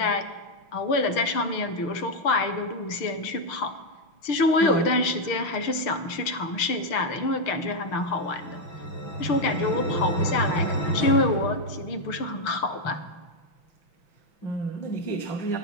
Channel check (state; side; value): late; right; 6.0 ms